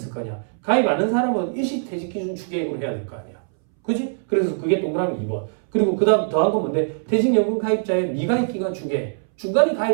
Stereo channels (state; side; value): silent; left; 63 dB below the other